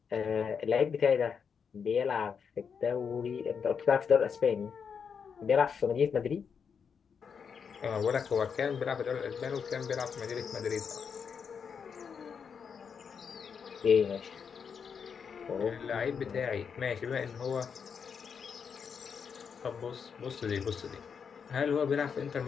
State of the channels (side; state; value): right; quieter; 6.5 dB